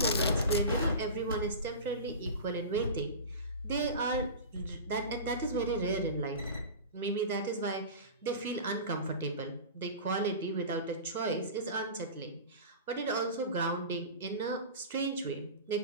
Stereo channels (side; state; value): both; inverted; correlation -0.31